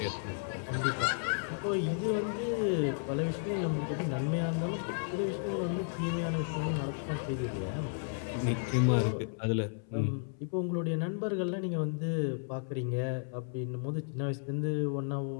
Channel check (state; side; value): silent; right; 56 dB below the other